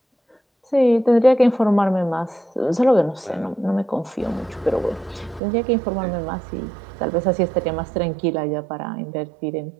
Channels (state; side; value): drops out; left; at 5.4 s